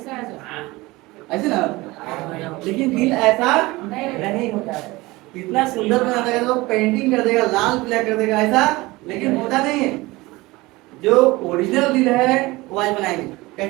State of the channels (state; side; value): quieter; left; 21.2 dB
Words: ऐसे ना, लेकिन दिल ऐसा नहीं होता है। इतना सुंदर बना देगा तो पेंटिंग कर देगा, लाल पीला कर देगा ऐसा, लेकिन होता नहीं है। जो ओरिजिनल दिल है वो आज बनाएंगे